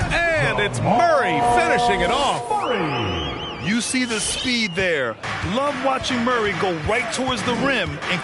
And it's Murray finishing it off. You see the speed there. Love watching Murray go right towards the rim and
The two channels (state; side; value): identical; both; correlation 1.00